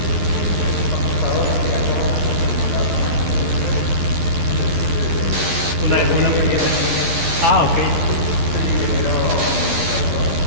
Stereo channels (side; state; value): left; late; 12 ms